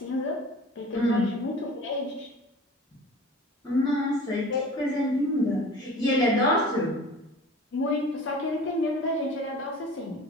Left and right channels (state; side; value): normal; both; correlation 0.41